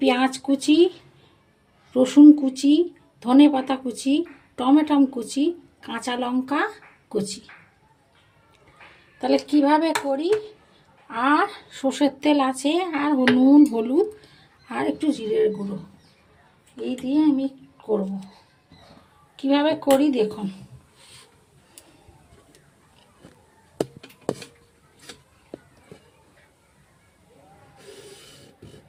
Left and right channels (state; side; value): identical; both; correlation 1.00